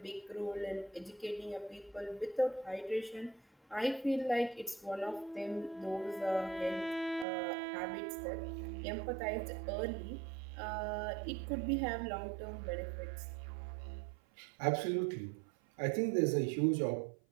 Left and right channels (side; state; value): left; drops out; at 7.2 s